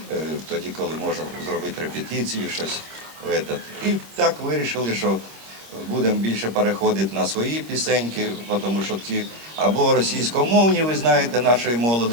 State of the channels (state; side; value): late; left; 26 ms